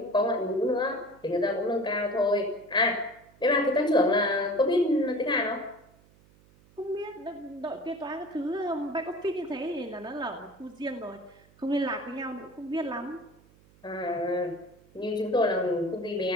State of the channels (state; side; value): noise; right; hum, 28 dB below the sound